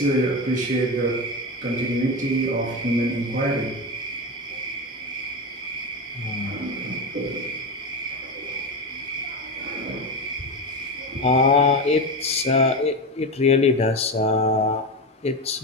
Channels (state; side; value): normal; both; correlation 0.18